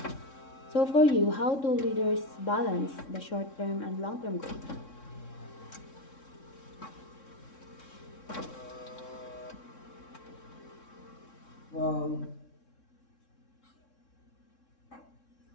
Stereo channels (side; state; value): right; late; 3.7 ms